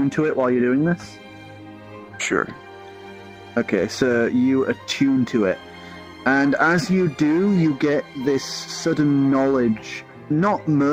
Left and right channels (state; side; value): identical; both; correlation 1.00